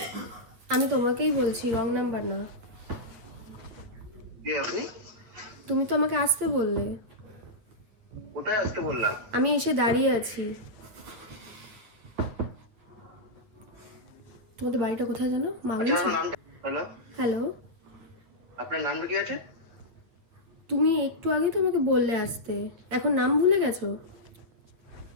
আমি তোমাকেই বলছি, রং নাম্বার না। কে আপনি? তুমি তো আমাকে আসতে বললে। কোথায় আসতে বললাম? আমি এসে দাঁড়িয়ে আছি। তোমাদের বাড়িটা কোথায় জানো? আচ্ছা, মাগলি। আপনার নামটা? হ্যালো, হ্যালো, আপনার নামটা কি আছে? তুমি একটু আগেই তো আমাকে বললে আসতে, এখন নাম ভুলে গেছো?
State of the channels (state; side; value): late; left; 8.8 ms